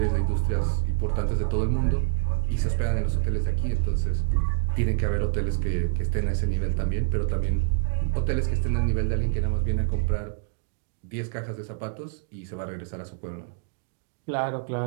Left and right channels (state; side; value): silent; left; 61 dB below the other